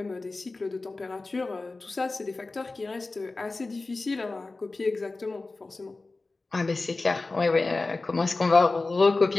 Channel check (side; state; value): right; quieter; 3.4 dB